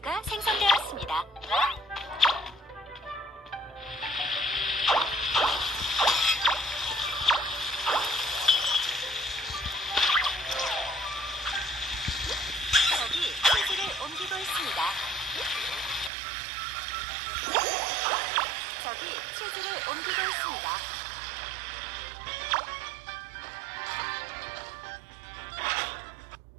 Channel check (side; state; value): left; drops out; at 16.1 s